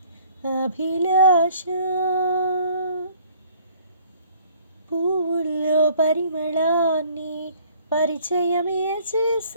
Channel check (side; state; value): both; inverted; correlation -0.56